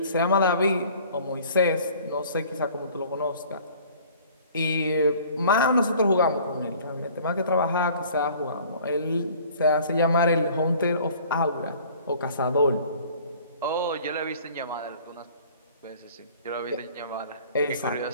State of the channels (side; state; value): both; inverted; correlation -0.50